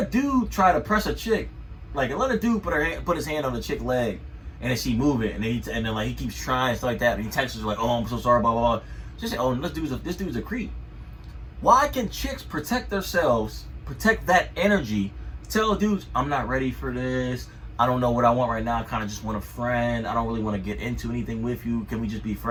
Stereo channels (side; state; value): both; identical; correlation 1.00